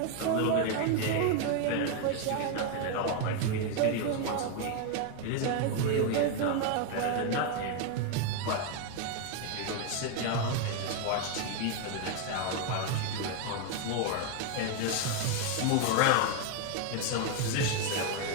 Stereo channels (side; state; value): both; different; correlation 0.01